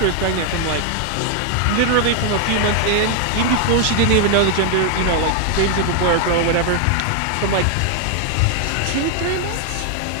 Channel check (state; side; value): different; both; correlation 0.00